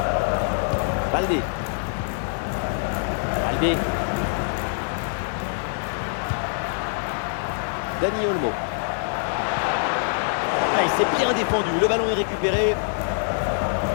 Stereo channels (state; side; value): silent; right; digital silence